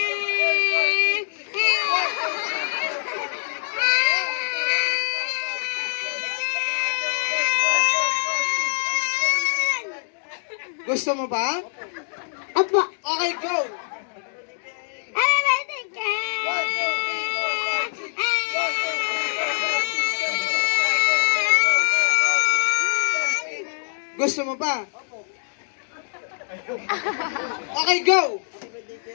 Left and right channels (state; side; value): silent; right; digital silence